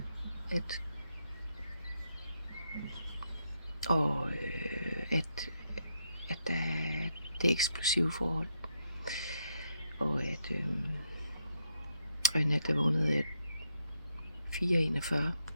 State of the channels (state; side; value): inverted; both; correlation -0.78